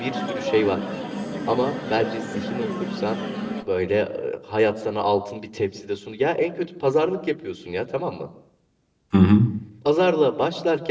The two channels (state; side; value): identical; both; correlation 1.00